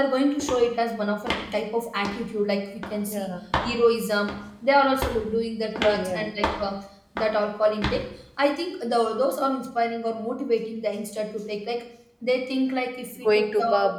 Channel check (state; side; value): identical; both; correlation 1.00